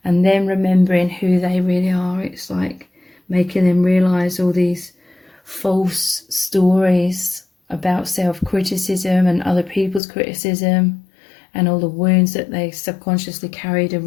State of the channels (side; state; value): right; drops out; at 10.0 s